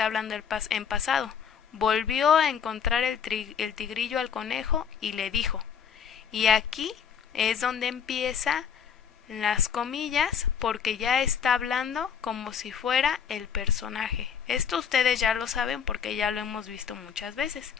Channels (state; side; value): quieter; right; 7.5 dB